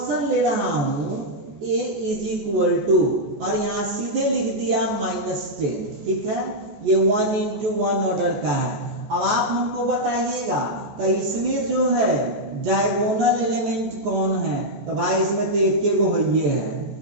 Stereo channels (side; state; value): left; late; 14 ms